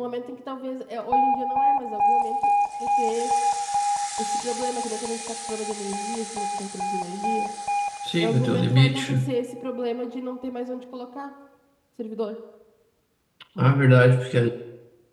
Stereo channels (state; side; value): identical; both; correlation 1.00